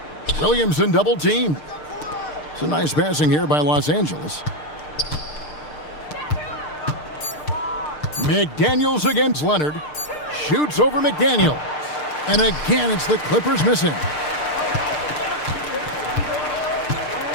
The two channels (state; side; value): late; right; 6.6 ms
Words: Williamson double teamed. It's a nice passing here by Los Angeles. McDaniels against Leonard. Shoots over McDaniels. And again, it's the Clippers missing.